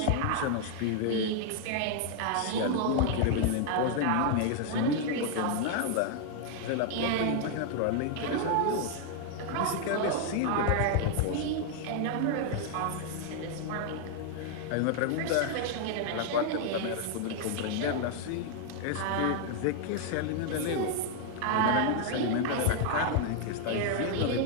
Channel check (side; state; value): both; different; correlation 0.00